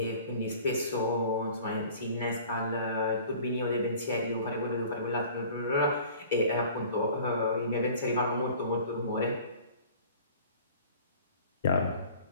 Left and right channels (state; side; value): inverted; both; correlation -0.46